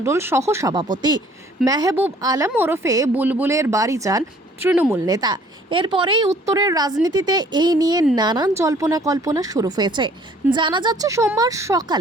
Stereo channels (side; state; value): both; normal; correlation 0.56